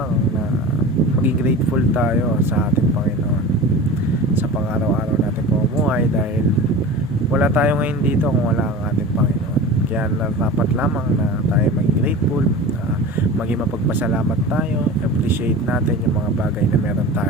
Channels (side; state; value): both; normal; correlation 0.34